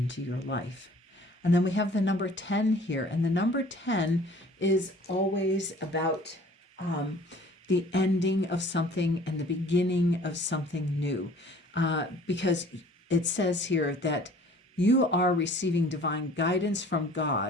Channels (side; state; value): both; normal; correlation 0.51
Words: your life. And then we have the number 10 here. And the number 10 is always about the ending of something and the beginning of something new. Because it says here that you are receiving divine guidance from